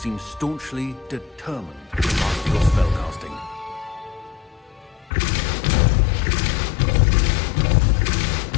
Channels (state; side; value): drops out; right; at 5.1 s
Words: staunchly determined to master your spellcasting.